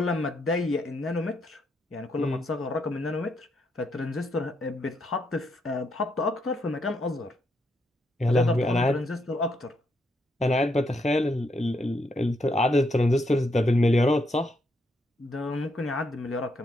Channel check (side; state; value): both; normal; correlation 0.77